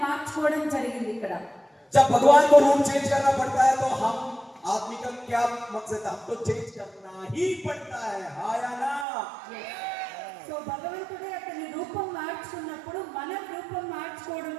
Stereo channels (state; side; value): drops out; left; at 9.1 s